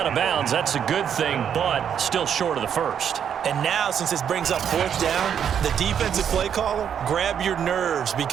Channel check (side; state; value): left; quieter; 8.4 dB